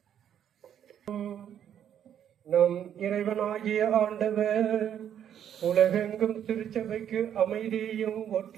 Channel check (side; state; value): left; quieter; 9.6 dB